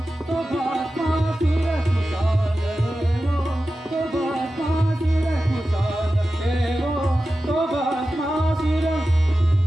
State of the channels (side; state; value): both; normal; correlation 0.93